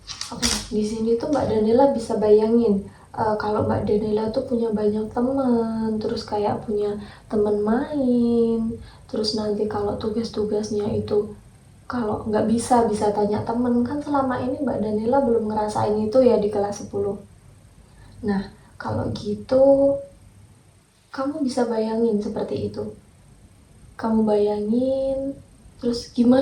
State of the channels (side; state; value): both; identical; correlation 1.00